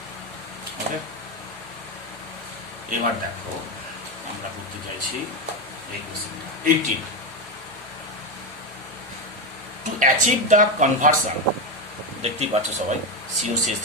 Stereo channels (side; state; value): both; normal; correlation 0.12